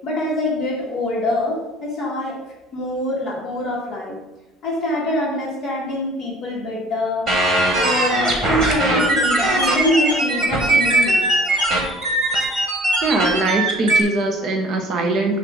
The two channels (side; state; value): both; normal; correlation 0.51